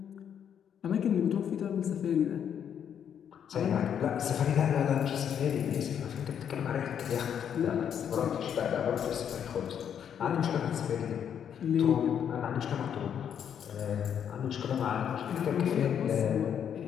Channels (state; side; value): quieter; right; 8.6 dB